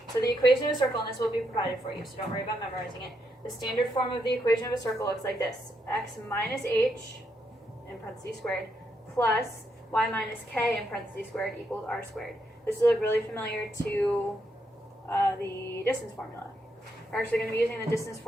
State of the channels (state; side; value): normal; both; correlation 0.79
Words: So the equation of a circle, and this will be provided for you, so don't worry about memorizing it. The standard form of the equation of a circle looks like this: x minus h, in parentheses squared, plus y minus k, in parentheses squared, equals r squared. This will look really familiar to the distance formula. We're actually going to be using the distance